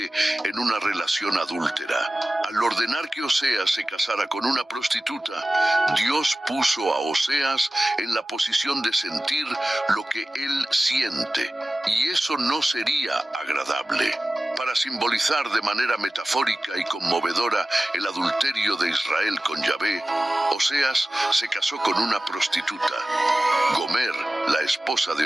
en una relación adúltera. Al ordenar que Oseas se casara con una prostituta, Dios puso a Oseas en la posición de sentir lo que él siente, y eso no sería agradable. Para simbolizar de manera metafórica y conmovedora el adulterio de Israel con Yahvé, Oseas se casó con una prostituta. Gomer, la esposa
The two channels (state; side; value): normal; both; correlation 0.96